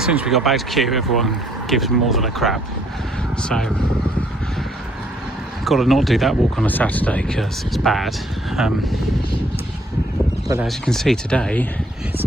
soon as we got back to Kew, everyone gives more than a crap. So got to not do that walk on a Saturday because it's bad. But as you can see today, it's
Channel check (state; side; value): normal; both; correlation 0.65